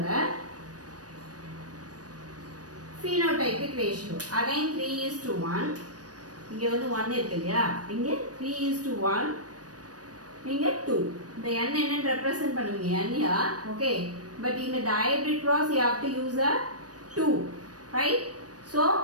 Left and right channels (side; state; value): left; late; 0.68 ms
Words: phenotypic ratio again 3:1. இங்க வந்து 1 இருக்கு இல்லையா, இங்க 3:1, இங்க 2. இந்த n என்னன்னு ரெப்ரசன்ட் பண்ணுவீங்க n here. Okay, but in the dihybrid cross you have to use a 2, right? So